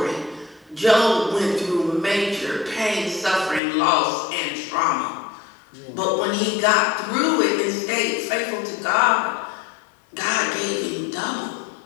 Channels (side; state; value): right; drops out; at 3.6 s